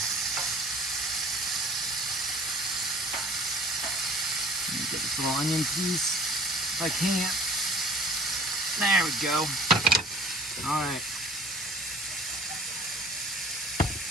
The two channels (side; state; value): both; normal; correlation 0.51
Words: Let me get this little onion piece if I can. There we go. Alright.